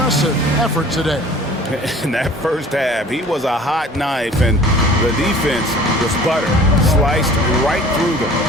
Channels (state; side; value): normal; both; correlation 0.48